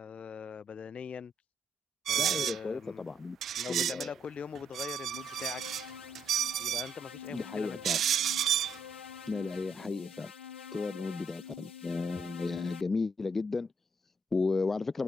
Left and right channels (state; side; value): normal; both; correlation 0.74